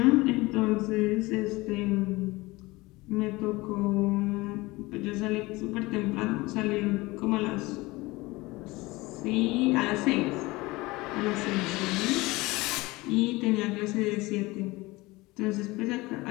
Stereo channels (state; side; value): quieter; right; 21.5 dB